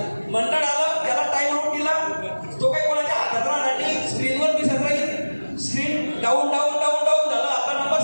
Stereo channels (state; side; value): inverted; both; correlation -1.00